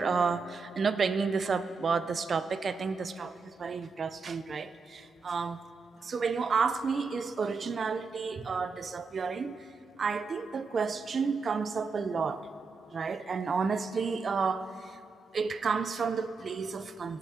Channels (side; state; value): left; quieter; 4.8 dB